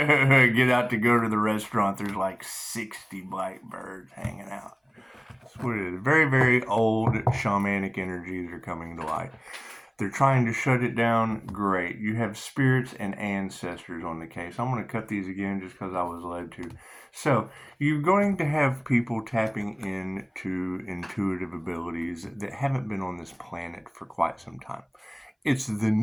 out to go to the restaurant. There's like 60 black birds hanging out. That's what it is. Very, very old shamanic energies are coming to light. They're trying to shut it down. Great. You have spirits and ancestors on the case. I'm going to cut these again just because I was led to. So you're going to have people tapping into intuitive abilities that haven't been on this planet for quite some time. It's the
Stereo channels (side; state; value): both; identical; correlation 1.00